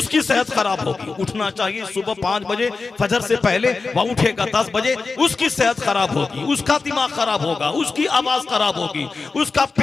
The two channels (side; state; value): right; quieter; 4.2 dB